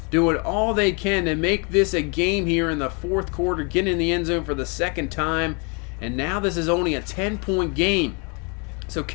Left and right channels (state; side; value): quieter; right; 33.5 dB